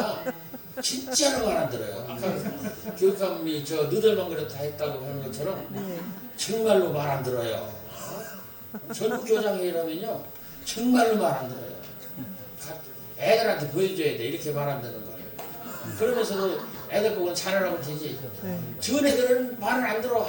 진짜로 말 안 들어요. 아까 교육감이 저 너들만 그렇다 했다고 하는 것처럼 정말로 말 안 들어요. 전국 교장회의라면요 정말로 말 안 들어요. 애들한테 보여줘야 돼. 이렇게 말 안 듣는 거예요. 그러면서도 애들 보고 잘하라고 되지. 저 애들은 말을 안 들어.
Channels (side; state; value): both; identical; correlation 1.00